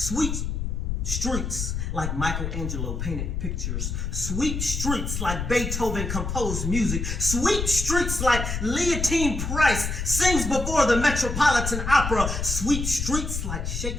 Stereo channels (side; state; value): left; noise; rumble, 3 dB below the sound